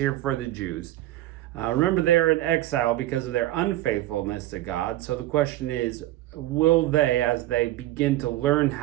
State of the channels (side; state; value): left; quieter; 15.5 dB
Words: for the Jews. Remember, they are in exile because of their unfaithfulness to God. So the question is, will they, as they begin to learn